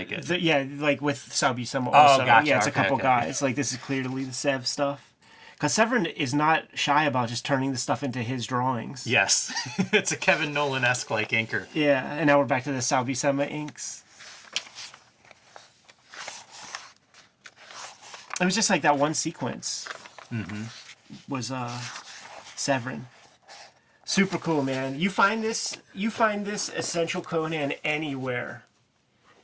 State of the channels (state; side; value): identical; both; correlation 1.00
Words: it. Yeah, like with Sal Buscema also. gotcha. Yeah, it's a Okay, couple okay. guys. Like, this is clearly the Sev stuff. Because Severin is not shy about just turning the stuff into his drawings. Yes. It's a Kevin Nolan-esque like inker. Yeah, and now we're back to the Sal Buscema inks. It was just like that one sequence. Was Severin. Super cool, man. You find this Essential Conan anywhere,